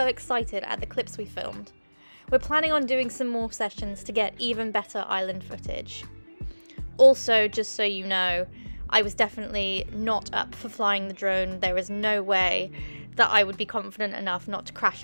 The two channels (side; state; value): both; inverted; correlation -1.00